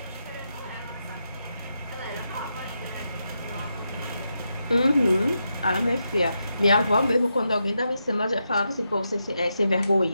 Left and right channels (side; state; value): both; inverted; correlation -0.85